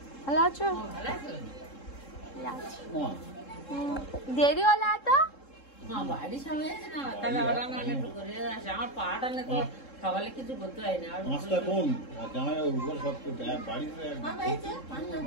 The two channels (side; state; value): right; late; 3.7 ms